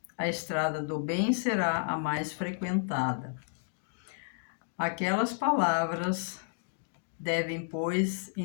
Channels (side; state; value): right; silent; digital silence